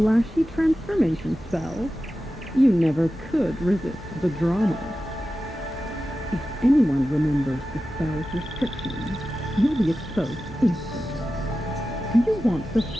transformation spell? You never could resist the drama. If anyone remembers the spell's restrictions, you'll be exposed instantly. Do you want the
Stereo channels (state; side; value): normal; both; correlation 0.93